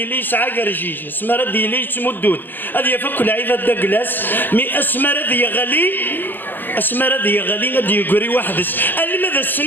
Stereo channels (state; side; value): late; right; 0.092 ms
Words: يسعى كرجيج اسمر لي تمدود هذه يفك العيبه داكلاس مي اسمر ذي غالي اسمر ذي غالي غادي يقري واحدس الماذا